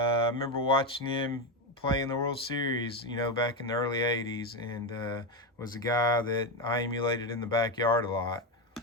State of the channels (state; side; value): normal; both; correlation 0.11